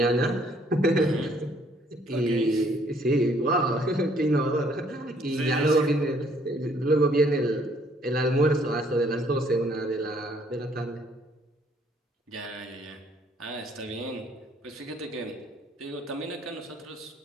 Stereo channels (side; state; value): both; normal; correlation 0.64